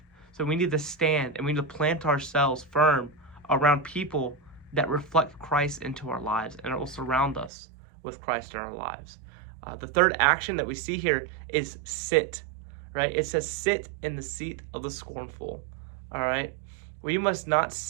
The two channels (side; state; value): left; drops out; at 7.5 s